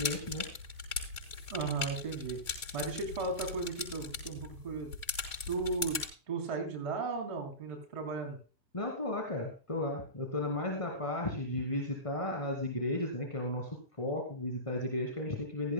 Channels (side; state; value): right; late; 1.6 ms